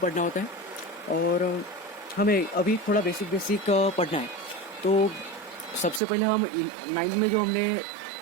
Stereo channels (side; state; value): left; drops out; at 6.0 s